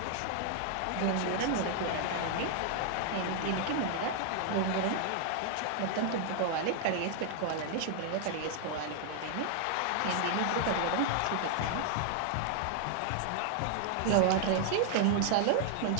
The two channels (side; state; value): both; different; correlation 0.00